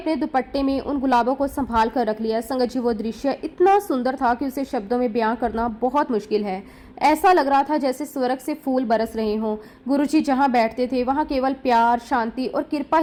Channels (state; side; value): identical; both; correlation 1.00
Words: दुपट्टे में उन गुलाबों को संभाल कर रख लिया। संगत जी, वो दृश्य इतना सुंदर था कि उसे शब्दों में बयां करना बहुत मुश्किल है। ऐसा लग रहा था जैसे स्वर्ग से फूल बरस रहे हों। गुरुजी जहां बैठते थे वहां केवल प्यार, शांति और कृपा